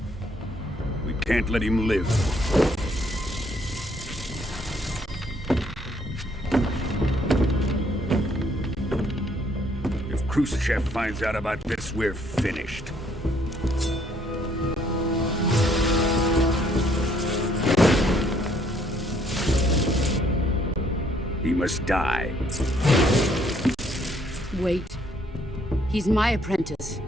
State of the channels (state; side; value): normal; both; correlation 0.66